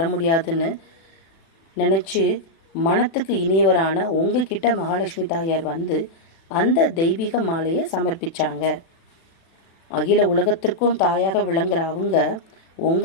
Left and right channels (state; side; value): late; right; 36 ms